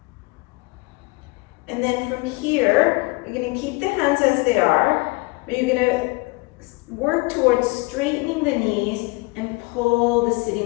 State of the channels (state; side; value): quieter; right; 25.6 dB